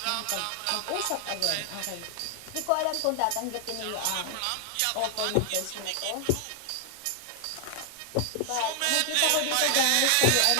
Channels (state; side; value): different; both; correlation 0.00